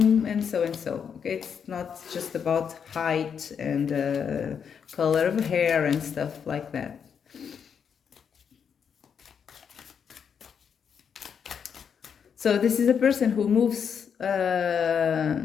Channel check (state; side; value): quieter; right; 7.2 dB